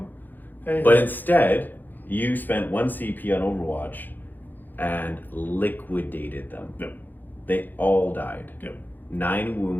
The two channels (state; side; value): late; right; 0.088 ms